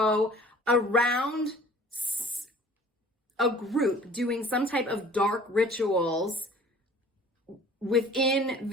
around a group doing some type of dark rituals within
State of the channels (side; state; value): both; normal; correlation 0.50